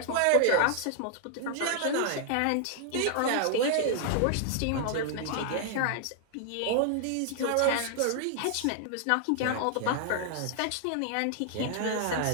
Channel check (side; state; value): both; different; correlation 0.00